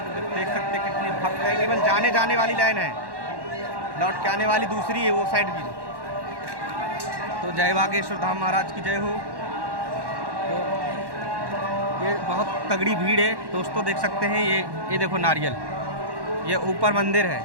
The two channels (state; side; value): late; left; 1.1 ms